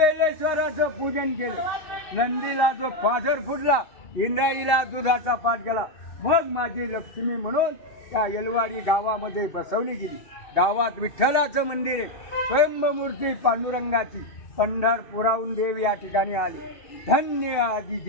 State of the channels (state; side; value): late; right; 2.7 ms